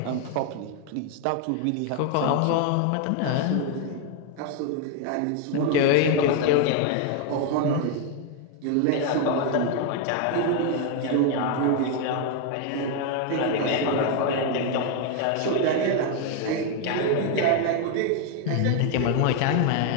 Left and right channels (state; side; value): different; both; correlation 0.01